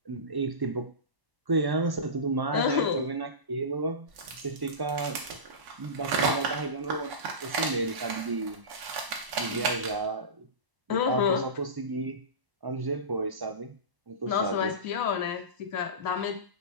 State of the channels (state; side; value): late; left; 1.0 ms